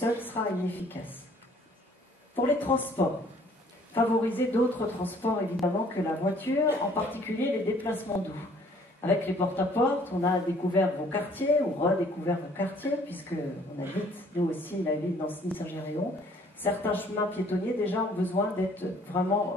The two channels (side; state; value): both; normal; correlation 0.58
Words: sera inefficace. Pour les transports, favoriser d'autres transports évidemment que la voiture, en particulier les déplacements doux. Avec les porte-à-porte, on a découvert vos quartiers, ou redécouvert vos quartiers, puisque on habite, nous aussi, la ville d'Ancenis-Saint-Géréon. Certains chemins piétonniers déjà ont besoin d'être vraiment